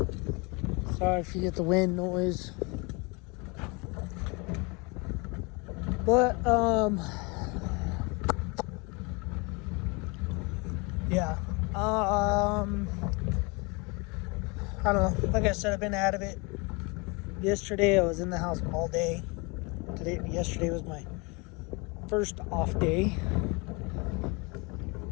Sorry if you get the wind noise. But, yeah. I don't know. Like I said, I've been out of it. Yesterday, I was in the house all day. Yesterday was my first off day.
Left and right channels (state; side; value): quieter; right; 28.8 dB